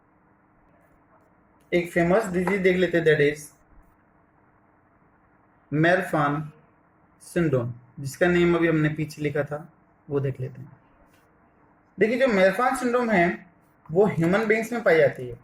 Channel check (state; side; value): identical; both; correlation 1.00